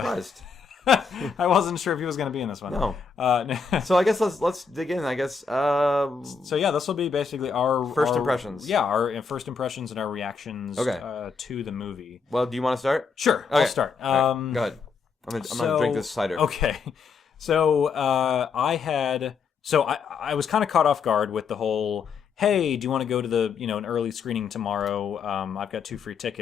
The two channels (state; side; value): quieter; right; 5.6 dB